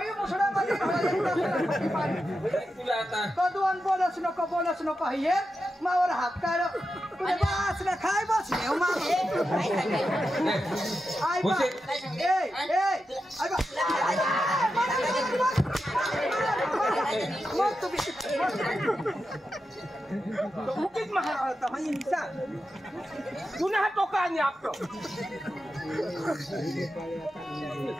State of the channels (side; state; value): both; normal; correlation 0.89